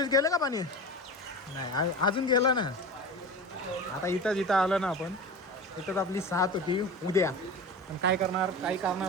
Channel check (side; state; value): both; normal; correlation 0.30